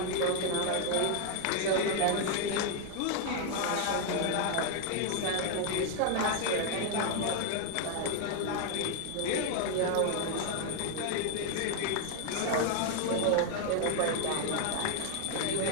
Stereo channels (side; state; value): both; different; correlation 0.00